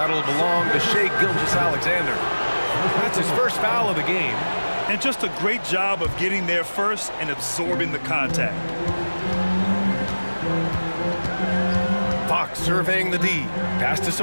belong to Shai Gilgeous-Alexander. That's his first foul of the game. And just a great job of getting there first and absorbing the contact. Fox surveying the D. Pass to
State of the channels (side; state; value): both; inverted; correlation -1.00